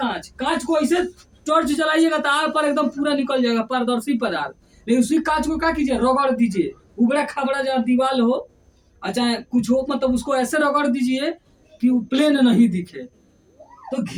कांच को ऐसे टॉर्च जलाइएगा तो आर पर एकदम पूरा निकल जाएगा, पारदर्शी पदार्थ। लेकिन उसी कांच को क्या कीजिए, रगड़ दीजिए, उबड़ा खबड़ा जहाँ दीवार हो, अच्छा कुछ हो, मतलब उसको ऐसे रगड़ दीजिए कि वो प्लेन नहीं दिखे। तो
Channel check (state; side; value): identical; both; correlation 1.00